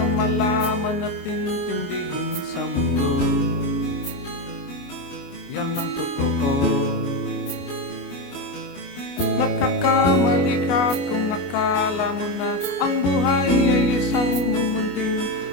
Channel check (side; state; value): right; late; 29 ms